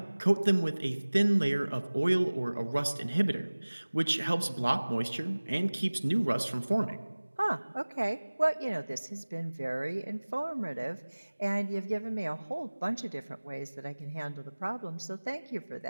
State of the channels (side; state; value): both; inverted; correlation -1.00